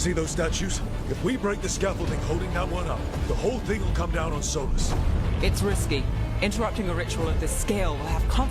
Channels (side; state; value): both; identical; correlation 1.00